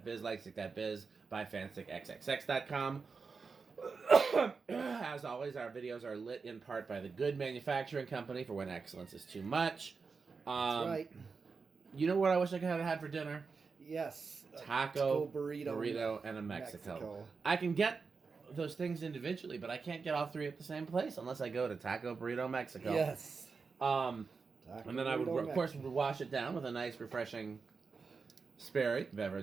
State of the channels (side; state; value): left; quieter; 4.9 dB